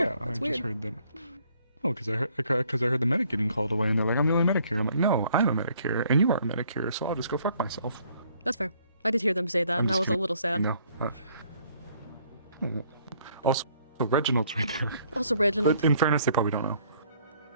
yeah, That's I weird. just heard them. Oh, because I heard the medic getting called away, and they're like, I'm the only medic here. I'm like, no, I'm a medic here, and you are a medic here, so I'll just go fuck myself. That's fair. I did hear them say that, and I was a little sad. No. Also, So Reginald's right there. Also Reginald. But in fairness, they probably don't know.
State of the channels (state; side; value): inverted; both; correlation -0.63